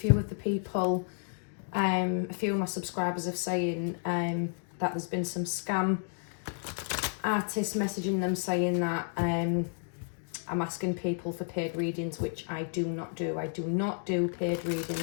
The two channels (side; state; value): right; silent; digital silence